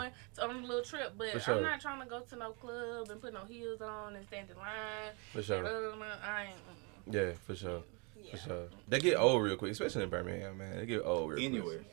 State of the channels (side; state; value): left; quieter; 32.7 dB